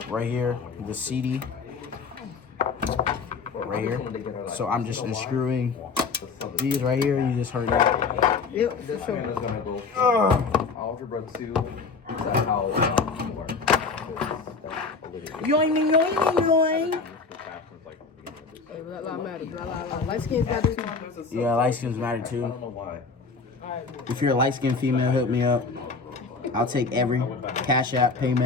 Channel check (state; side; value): quieter; right; 4.6 dB